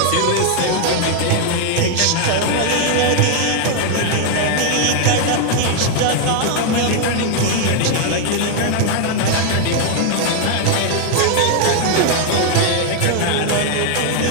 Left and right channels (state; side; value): different; both; correlation 0.00